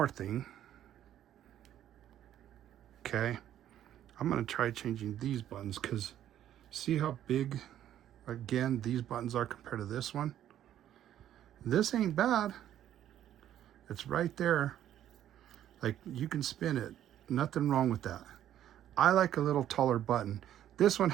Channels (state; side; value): quieter; left; 11.4 dB